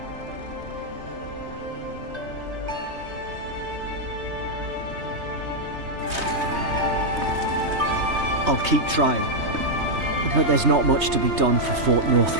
I'll keep trying. But there's not much to be done for Fort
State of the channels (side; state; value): left; late; 3.2 ms